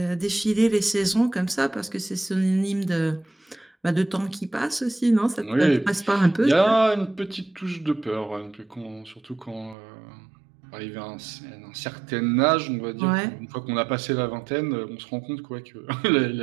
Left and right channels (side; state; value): left; drops out; at 9.8 s